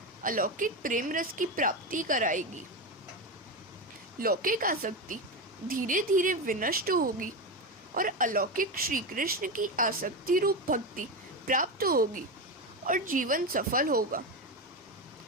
अलौकिक प्रेम रस की प्राप्ति कराएगी। लौकिक आसक्ति धीरे धीरे विनष्ट होगी और अलौकिक श्री कृष्ण की आसक्ति रूप भक्ति प्राप्त होगी और जीवन सफल होगा।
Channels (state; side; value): normal; both; correlation 0.16